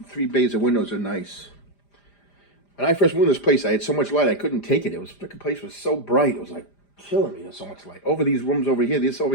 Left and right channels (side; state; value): right; late; 5.0 ms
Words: 3 bays of windows are nice. When I first moved to this place, I had so much light I couldn't take it. It was, the place was so bright. It was like killing me. There's so much light. Over these rooms over here, this